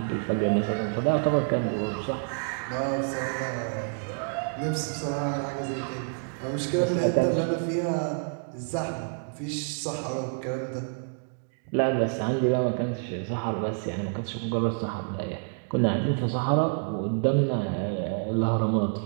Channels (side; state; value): left; silent; 59 dB below the other